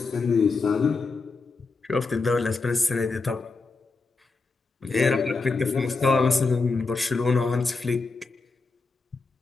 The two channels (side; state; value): right; quieter; 4.0 dB